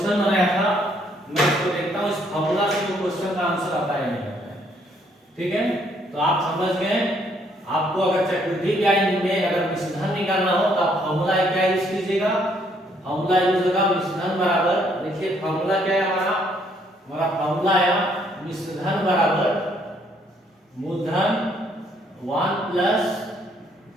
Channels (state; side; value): normal; both; correlation 0.68